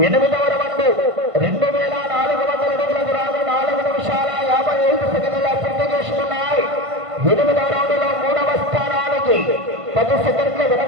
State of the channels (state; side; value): late; left; 1.5 ms